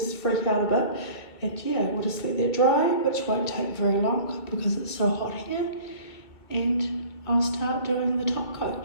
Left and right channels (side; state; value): right; late; 2.1 ms